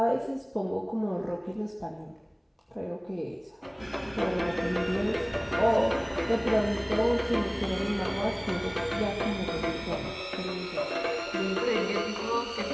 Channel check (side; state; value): both; identical; correlation 1.00